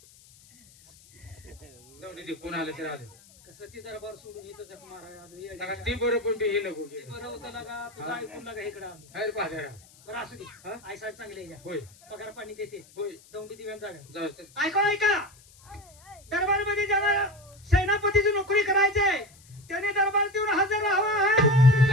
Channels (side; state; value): left; noise; hiss, 25 dB below the sound